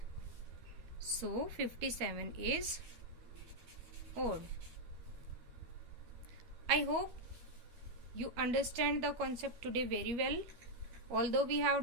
So 57 is odd. I hope you understand the concept today very well. Although we have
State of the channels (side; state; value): left; late; 13 ms